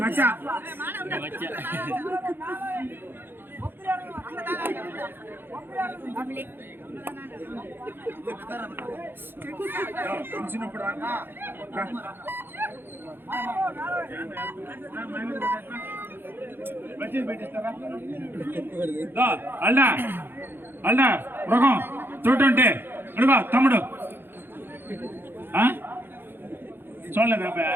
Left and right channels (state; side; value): late; left; 0.10 ms